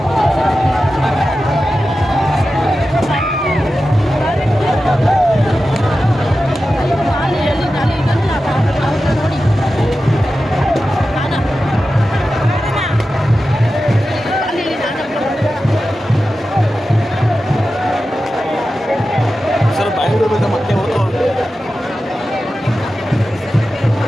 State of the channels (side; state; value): both; normal; correlation 0.93